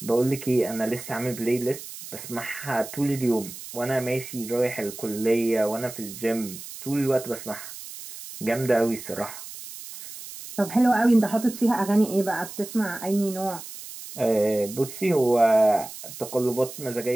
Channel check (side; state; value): right; noise; hiss, 13 dB below the sound